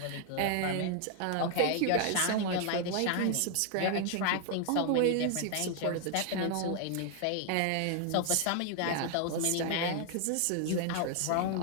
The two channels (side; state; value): both; different; correlation 0.00